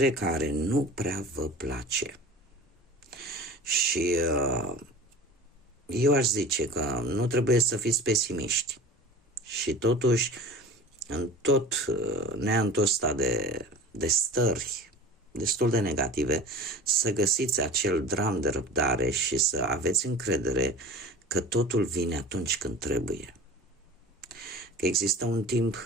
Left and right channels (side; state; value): both; normal; correlation 0.37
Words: care nu prea vă place. Și eu aș zice că nu trebuie să fiți pesimiști. Și totuși, în tot neantul ăsta de stări destul de negative, să găsiți acel dram de răbdare și să aveți încredere că totul vine atunci când trebuie. Că există un timp